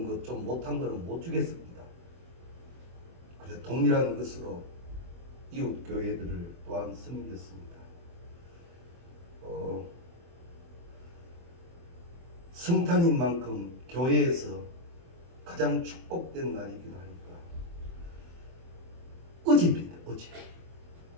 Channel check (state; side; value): late; left; 23 ms